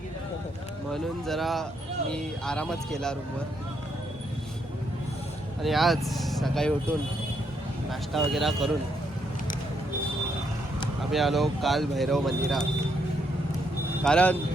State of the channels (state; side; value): normal; both; correlation 0.76